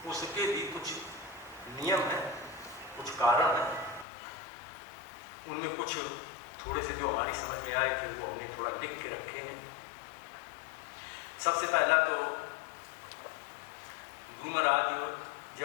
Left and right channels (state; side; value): drops out; right; at 4.0 s